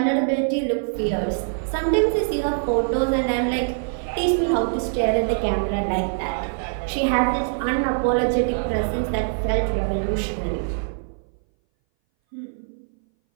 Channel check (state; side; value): silent; left; 60 dB below the other